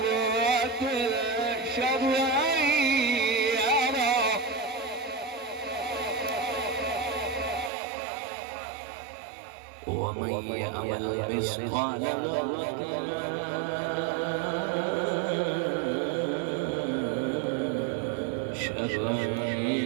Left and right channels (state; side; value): drops out; left; at 7.7 s